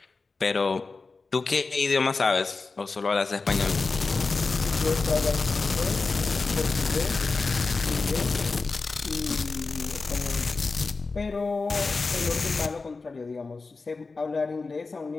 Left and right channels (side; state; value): right; quieter; 4.0 dB